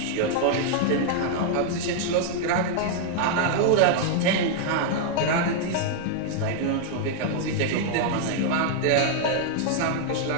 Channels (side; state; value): both; different; correlation -0.01